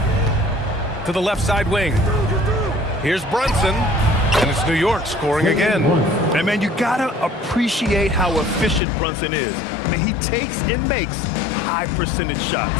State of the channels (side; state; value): right; drops out; at 8.8 s